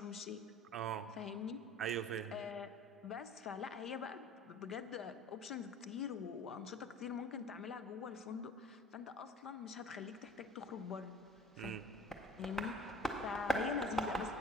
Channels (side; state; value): both; normal; correlation 0.44